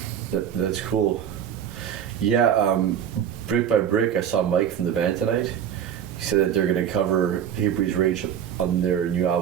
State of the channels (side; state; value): left; quieter; 9.1 dB